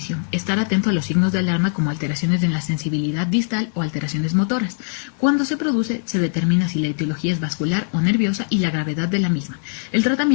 estar atento a los signos de alarma como alteraciones en la sensibilidad distal o alteraciones motoras. Cuando se produce, se determina si la etiología es vascular o nerviosa y la gravedad de la misma. El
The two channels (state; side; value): silent; right; digital silence